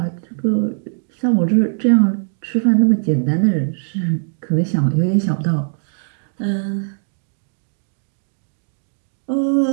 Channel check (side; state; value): left; silent; digital silence